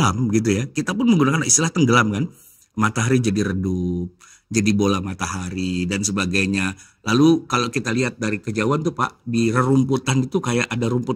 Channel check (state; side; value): identical; both; correlation 1.00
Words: gitu ya, kita pun menggunakan istilah tenggelam kan. Matahari jadi redup, jadi bola matahari dan sebagainya. Lalu kalau kita lihat dari kejauhan tuh Pak, di rerumputan itu kayak ada